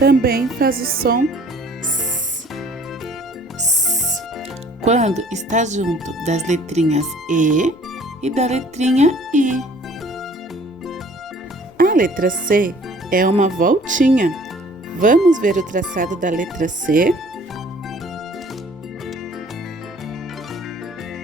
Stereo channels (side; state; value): both; normal; correlation 0.54